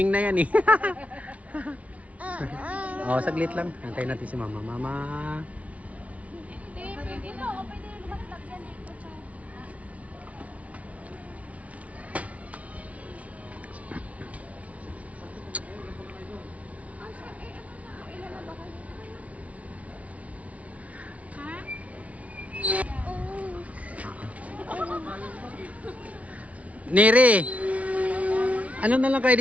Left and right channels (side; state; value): left; late; 0.066 ms